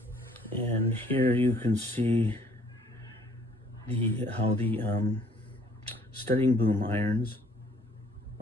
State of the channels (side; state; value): both; normal; correlation 0.60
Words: And here you can see how the studding boom irons